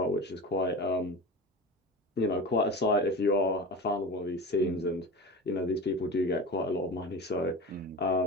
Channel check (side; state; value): both; normal; correlation 0.30